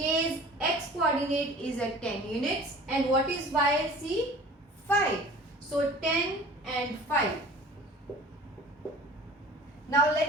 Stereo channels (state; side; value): normal; both; correlation 0.44